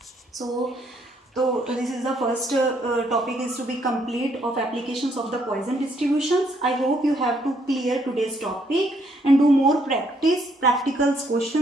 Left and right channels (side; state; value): both; normal; correlation 0.70